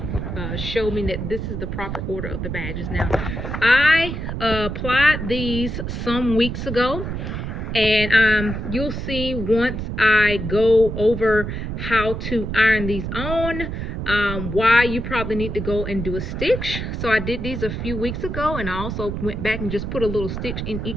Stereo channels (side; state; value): right; noise; rumble, 4 dB below the sound